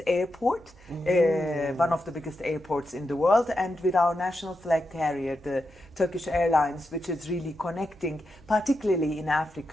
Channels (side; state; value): right; noise; hum, 25 dB below the sound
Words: airport, one of the biggest airports in the world, and with our national flag carrier, the Turkish Airlines, which is really connecting, particularly in